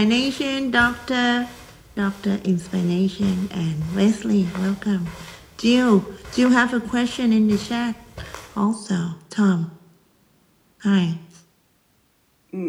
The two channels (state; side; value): identical; both; correlation 1.00